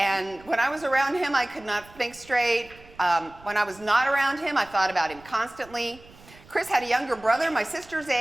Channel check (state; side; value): noise; right; rumble, 23 dB below the sound